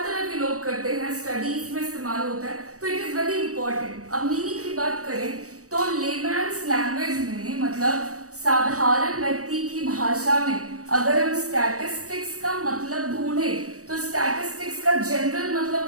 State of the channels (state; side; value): late; left; 0.66 ms